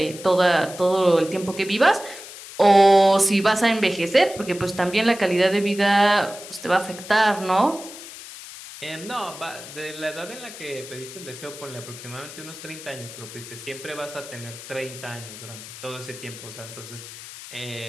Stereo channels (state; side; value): noise; left; hiss, 14 dB below the sound